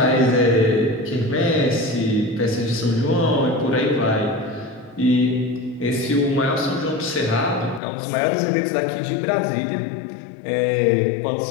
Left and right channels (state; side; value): drops out; right; at 7.8 s